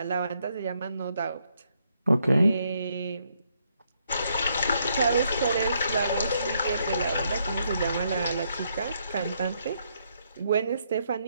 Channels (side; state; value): both; inverted; correlation -0.74